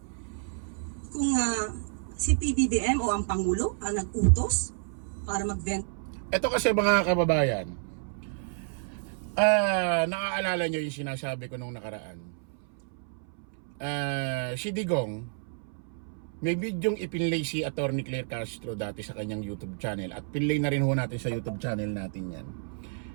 kung si PBBM o ang Pangulo ang nag-utos para magbenta. Ito kasi mga kababayan, naaalala nyo yung sinasabi ko nung nakaraan. Si Digong, may bidyong ipinlay si Atty. Claire Castro dati sa kanyang YouTube channel at pinlay na rin ho natin sa YouTube channel natin yan.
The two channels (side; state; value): left; silent; 58 dB below the other